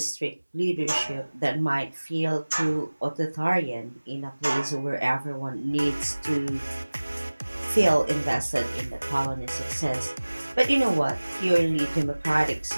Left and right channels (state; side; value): inverted; both; correlation -1.00